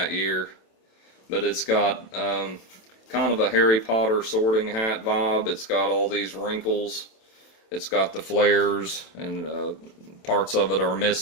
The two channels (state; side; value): late; right; 27 ms